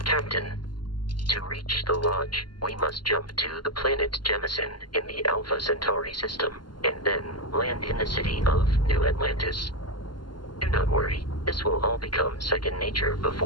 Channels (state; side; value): late; right; 0.71 ms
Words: Captain, to reach the Lodge, we must jump to the planet Jemison in the Alpha Centauri system, and then land in the city of New Atlantis. Do not worry, this will all become second nature